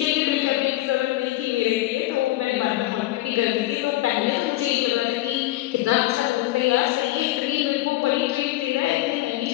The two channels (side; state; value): right; quieter; 16.8 dB